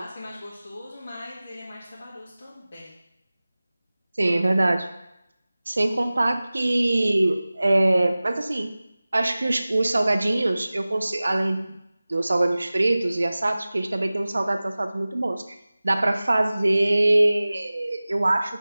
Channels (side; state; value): both; inverted; correlation -0.98